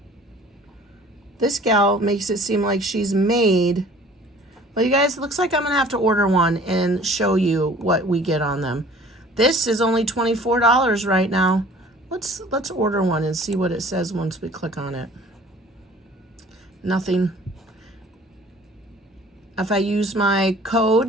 This gal makes it seem like she's made. Well, you guys, it looks like I'm gonna have to order one and show you what we get on them. This is only $24 right now. Let's order one and see what it says once we click on it. Nothing. If I use my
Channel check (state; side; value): normal; both; correlation 0.50